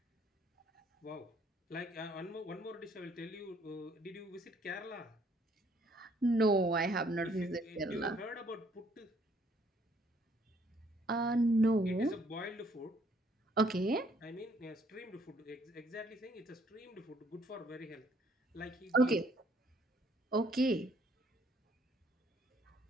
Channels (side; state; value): both; normal; correlation 0.65